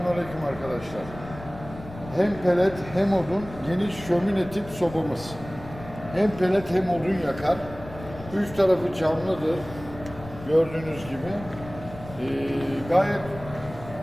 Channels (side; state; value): left; noise; rumble, 15 dB below the sound